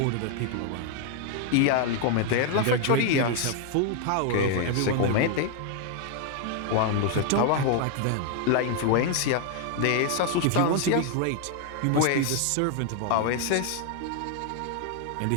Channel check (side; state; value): both; different; correlation 0.00